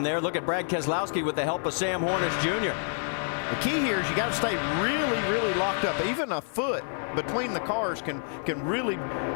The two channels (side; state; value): right; silent; digital silence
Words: there. Look at Brad Keselowski with the help of Sam Hornish Jr. The key here is you got to stay really, really locked up. Even a foot between the cars can really